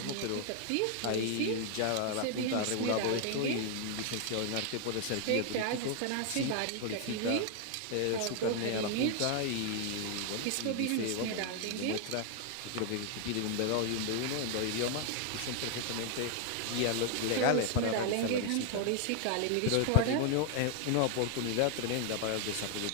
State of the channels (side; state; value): both; different; correlation 0.00